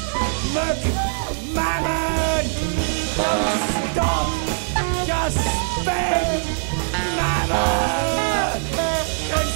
Look, mammon! Don't stop! Just spend! Mammon!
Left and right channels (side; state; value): left; silent; 64 dB below the other